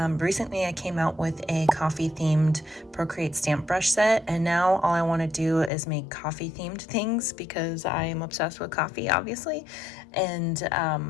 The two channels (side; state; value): right; drops out; at 5.7 s